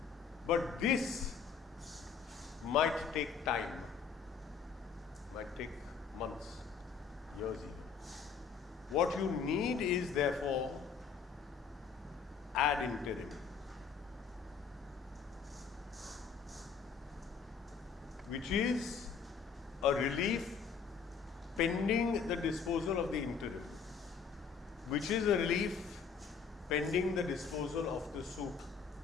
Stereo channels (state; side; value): quieter; right; 6.1 dB